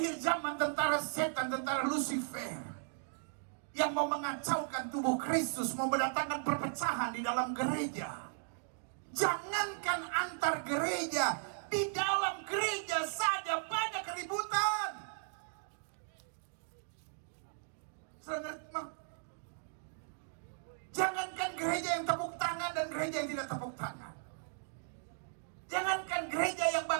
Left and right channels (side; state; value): left; silent; digital silence